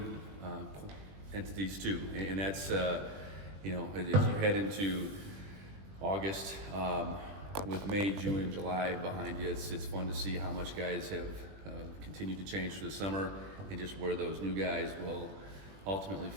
entities too, and that's as you head into August, with May, June, and July behind you, it's fun to see how much guys have continued to change through the summer, and just where those new guys will ultimately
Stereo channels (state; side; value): late; left; 20 ms